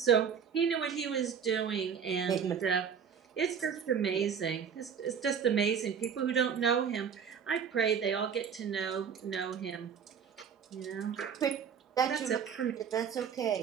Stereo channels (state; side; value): quieter; left; 7.2 dB